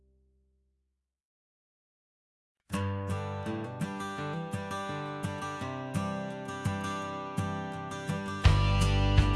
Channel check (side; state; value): both; identical; correlation 1.00